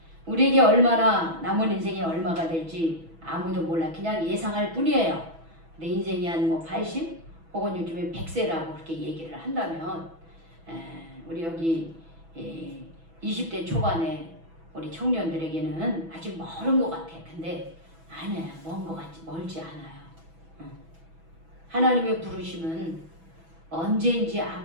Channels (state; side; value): late; left; 6.1 ms